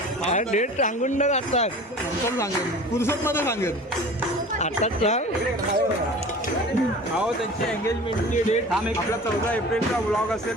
अरे डेट सांगून टाकतात सांगेल पुरुषात मध्ये सांगेल आता सांग हो त्यांची एंगेजमेंटची डेट आपला 14 एप्रिलचा व्लॉग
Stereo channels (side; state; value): both; normal; correlation 0.40